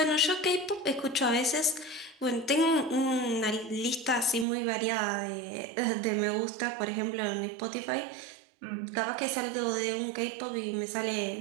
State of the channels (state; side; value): drops out; left; at 4.5 s